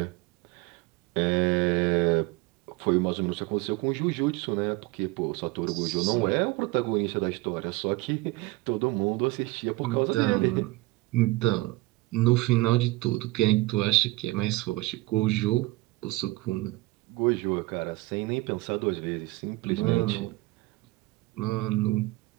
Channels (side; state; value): left; quieter; 20.7 dB